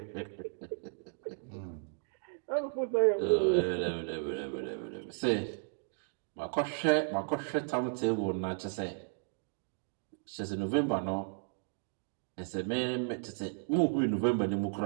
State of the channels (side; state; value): left; silent; digital silence